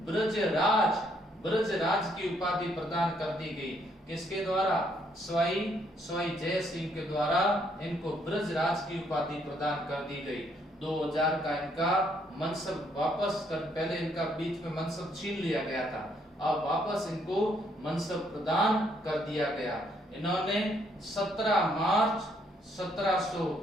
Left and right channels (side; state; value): both; normal; correlation 0.70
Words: ब्रजराज की उपाधि प्रदान कर दी गई। किसके द्वारा, सवाई जय सिंह के द्वारा इनको ब्रजराज की उपाधि प्रदान कर दी गई। 2000 का इनका मनसब वापस कर, पहले इनका बीच में मनसब छीन लिया गया था, अब वापस इनको मनसब प्रदान कर दिया गया। इन्होंने 17 मार्च